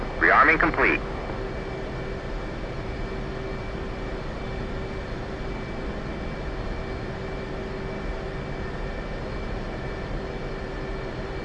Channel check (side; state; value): both; identical; correlation 1.00